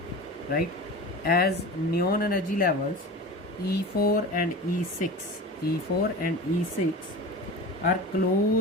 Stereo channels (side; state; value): both; normal; correlation 0.31